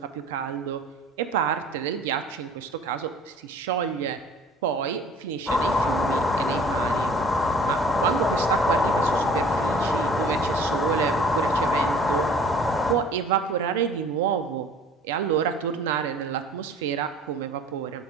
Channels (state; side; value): normal; both; correlation 0.49